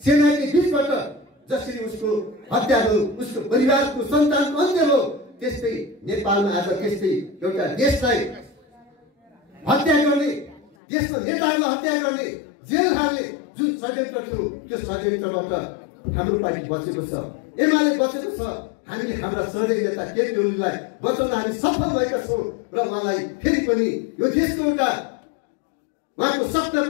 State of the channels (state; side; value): drops out; right; at 10.7 s